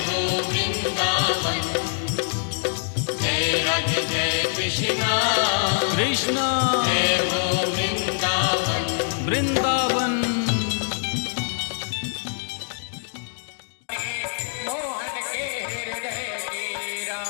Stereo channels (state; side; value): silent; right; digital silence